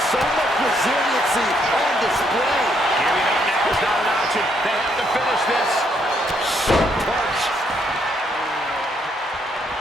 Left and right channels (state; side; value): normal; both; correlation 0.73